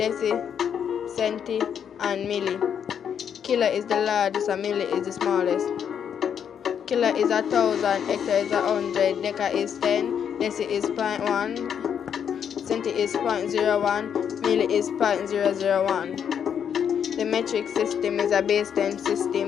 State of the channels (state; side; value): quieter; right; 8.2 dB